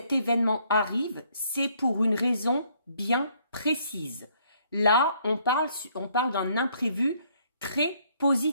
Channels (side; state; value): both; inverted; correlation -0.66